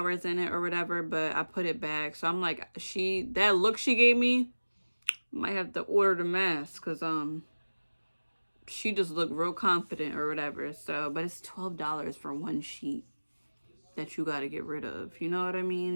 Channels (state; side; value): inverted; both; correlation -1.00